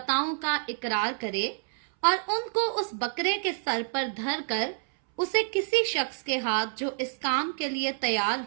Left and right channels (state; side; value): silent; left; 59 dB below the other